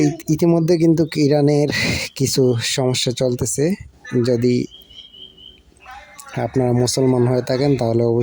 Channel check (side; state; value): both; identical; correlation 1.00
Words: ইতিমধ্যে কিন্তু ইরানের কিছু সমস্যা চলতেছে। যদি আপনারা মুসলমান হয়ে থাকেন তাহলে